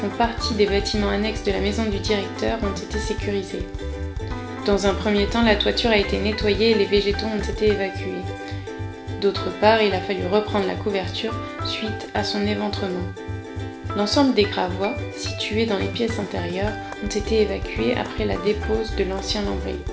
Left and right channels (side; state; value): both; identical; correlation 1.00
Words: partie des bâtiments annexes de la maison du directeur, ont été sécurisés. Dans un premier temps, la toiture a été nettoyée et les végétaux ont été évacués. D'autre part, il a fallu reprendre la couverture suite à son éventrement. L'ensemble des gravois, situés dans les pièces intérieures, ont été évacués après la dépose de l'ancien lambris.